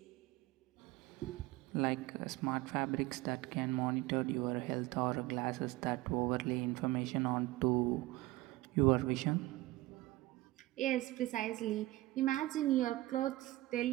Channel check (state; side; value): quieter; left; 18.6 dB